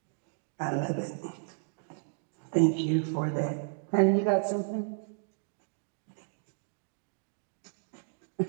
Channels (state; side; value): silent; left; digital silence